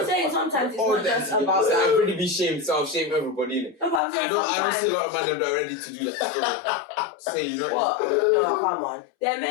saying sometimes it's not just about. I'd really be shamed, so I'll shame everybody, innit? No, but I'm saying I don't see a lot of men that are ready to do that. Say, you know. What? No, come on. There are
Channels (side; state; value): right; drops out; at 4.0 s